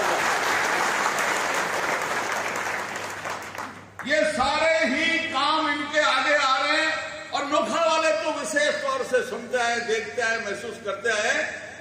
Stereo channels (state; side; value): identical; both; correlation 1.00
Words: ये सारे ही काम इनके आगे आ रहे हैं और नोखा वाले तो विशेष तौर से सुनते हैं, देखते हैं, महसूस करते हैं